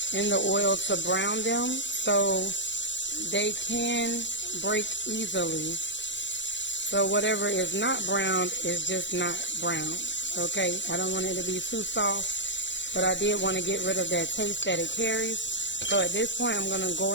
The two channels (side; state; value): right; late; 0.53 ms